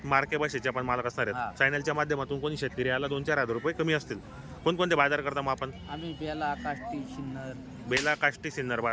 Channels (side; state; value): both; identical; correlation 1.00